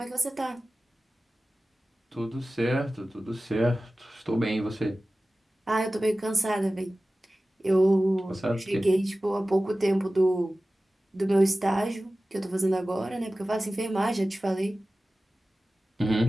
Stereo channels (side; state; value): both; normal; correlation 0.96